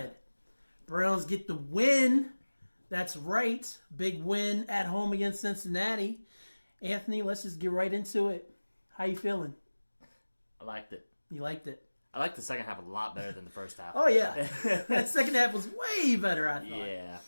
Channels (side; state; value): both; inverted; correlation -1.00